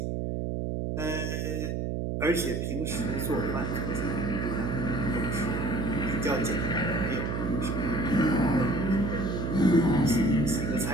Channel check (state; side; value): noise; right; hum, 1 dB below the sound